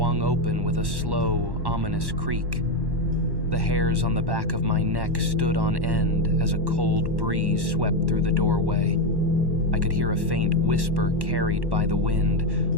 open with a slow, ominous creak. The hairs on the back of my neck stood on end as a cold breeze swept through the doorway. I could hear a faint whisper carried by the wind,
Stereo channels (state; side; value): late; left; 1.1 ms